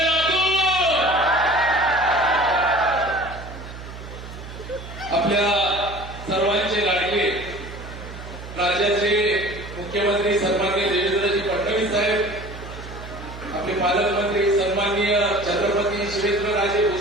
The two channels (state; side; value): noise; right; hum, 12 dB below the sound